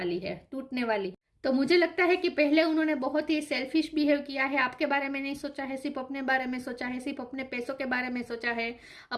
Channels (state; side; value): identical; both; correlation 1.00